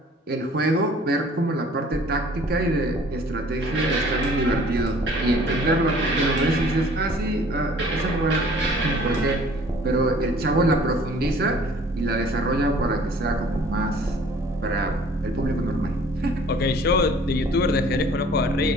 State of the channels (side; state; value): both; normal; correlation 0.52